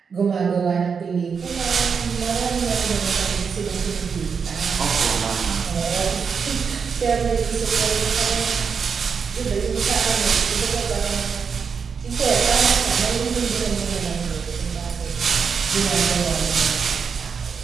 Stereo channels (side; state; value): left; quieter; 6.0 dB